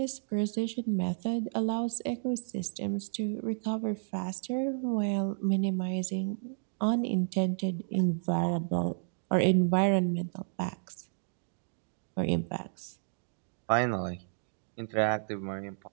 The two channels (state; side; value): silent; left; digital silence